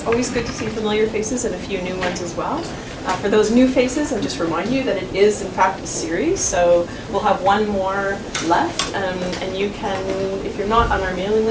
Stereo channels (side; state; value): both; identical; correlation 1.00